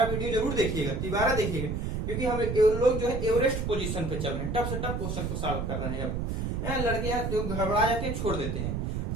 वीडियो जरूर देखिएगा, तिबारा देखिएगा, क्योंकि हम लोग जो है एवरेस्ट पोजीशन पे चल रहे हैं, टफ से टफ क्वेश्चन को सॉल्व कर रहे हैं। अब लड़के जो घबरा जाते हैं छोड़ देते हैं,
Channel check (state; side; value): noise; right; rumble, 2 dB below the sound